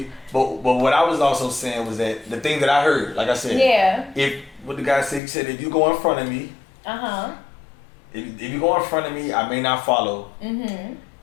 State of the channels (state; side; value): drops out; right; at 5.2 s